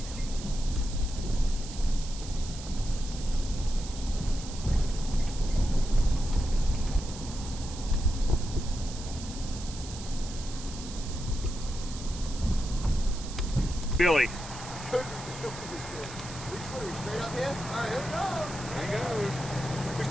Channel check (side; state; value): right; noise; hiss, 12 dB below the sound